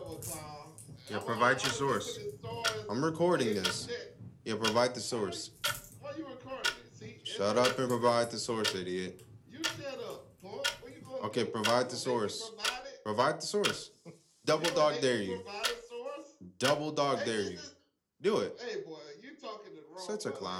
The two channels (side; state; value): both; identical; correlation 1.00